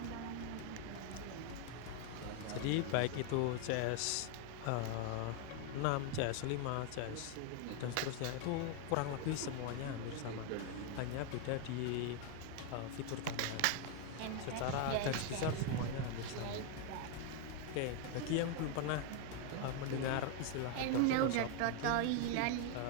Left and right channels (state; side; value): different; both; correlation 0.01